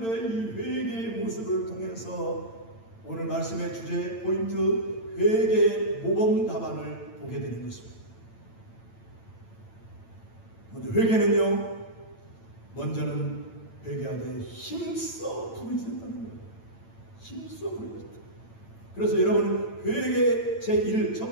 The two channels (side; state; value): right; late; 8.9 ms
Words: 이 회개의 모습을 통해서 오늘 말씀의 주제 포인트 회개의 모범 답안을 보게 되는 것입니다. 먼저 회개는요, 먼저는 회개하되 힘써 부르짖었다는 거예요. 힘써 부르짖었다. 그래서 여러분 회개 제1